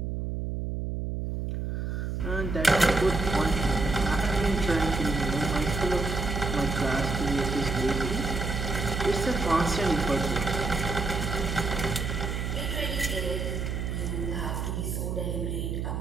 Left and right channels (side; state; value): right; noise; hum, 2 dB below the sound